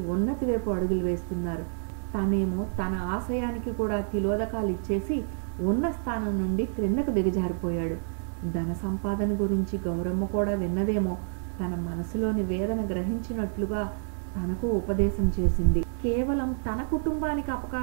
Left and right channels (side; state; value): left; silent; 59 dB below the other